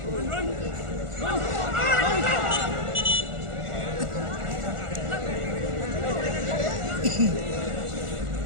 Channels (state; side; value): late; left; 1.4 ms